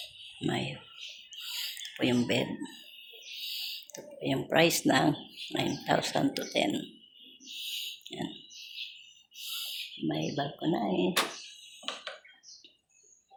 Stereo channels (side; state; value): both; identical; correlation 1.00